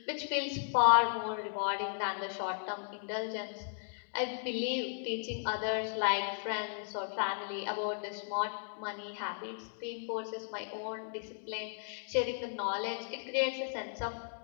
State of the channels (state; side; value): silent; right; digital silence